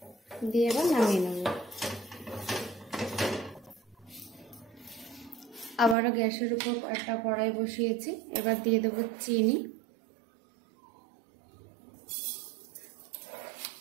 দিয়ে এবার নামিয়ে নেব। আবারও গ্যাসের উপর একটা কড়াই বসিয়েছি। এবার দিয়ে দেব চিনি,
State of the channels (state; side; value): drops out; left; at 6.0 s